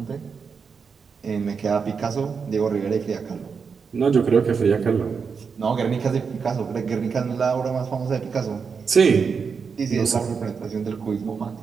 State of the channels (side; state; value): left; quieter; 5.7 dB